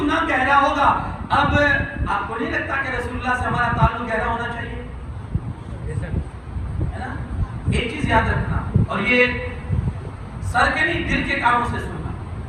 گہرا ہوگا۔ اب آپ کو نہیں لگتا کہ رسول اللہ سے ہمارا تعلق گہرا ہونا چاہیے؟ ہے نا؟ ایک چیز یاد رکھنا، اور یہ سر کے نہیں دل کے کاموں سے سننا،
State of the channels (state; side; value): identical; both; correlation 1.00